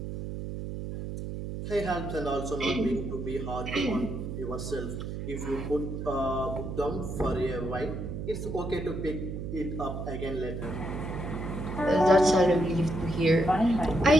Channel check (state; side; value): noise; right; hum, 6 dB below the sound